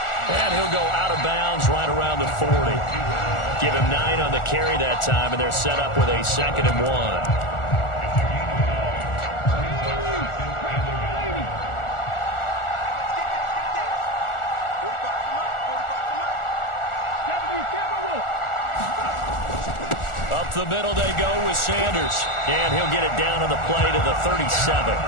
And he'll go out of bounds right around the 40. Give him 9 on the carry that time, and they're set up with a 2nd and 1. Up the middle they go with Sanders. And he'll get it down on the play to the 37.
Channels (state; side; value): late; right; 1.4 ms